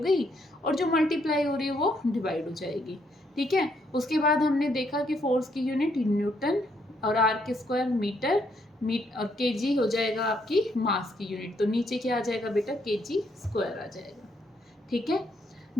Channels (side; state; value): both; normal; correlation 0.73